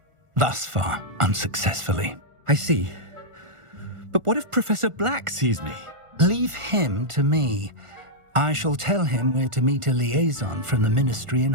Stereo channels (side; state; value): left; late; 1.4 ms